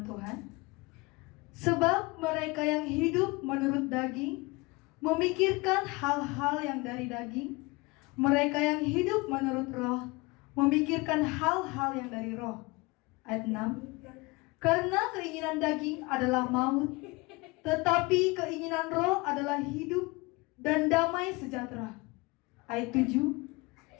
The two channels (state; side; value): quieter; right; 24.7 dB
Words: Tuhan. Sebab mereka yang hidup menurut daging memikirkan hal-hal yang dari daging. Mereka yang hidup menurut roh memikirkan hal-hal yang dari roh. Ayat 6. Karena keinginan daging adalah maut, tetapi keinginan roh adalah hidup dan damai sejahtera. Ayat 7.